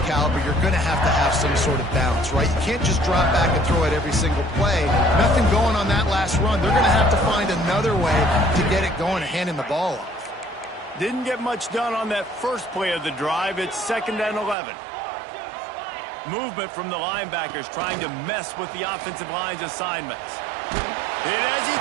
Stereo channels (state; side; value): drops out; left; at 14.6 s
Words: caliber, you're going to have some sort of balance, right? You can't just drop back and throw it every single play. Nothing going on that last run. They're going to have to find another way to get it going and handing the ball off. Didn't get much done on that first play of the drive. It's 2nd and 11. Movement from the linebackers trying to mess with the offensive line's assignments. Hit as he